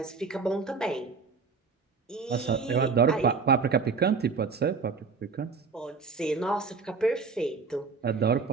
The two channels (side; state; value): left; quieter; 4.9 dB